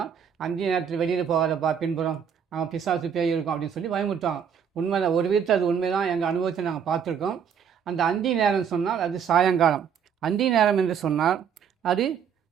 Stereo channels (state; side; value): quieter; left; 7.6 dB